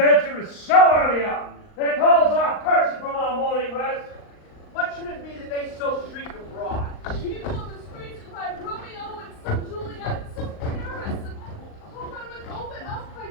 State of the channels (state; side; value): late; right; 39 ms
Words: is so early on that calls our person from our morning rest? What should it be that they so shriek abroad? People in the streets cry Romeo and some Juliet and some Paris, and hope I would open up by